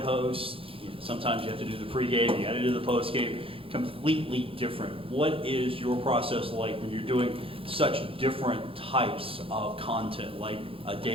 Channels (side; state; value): left; late; 0.27 ms